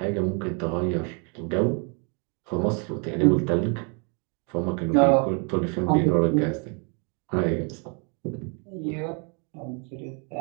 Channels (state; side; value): quieter; left; 36.7 dB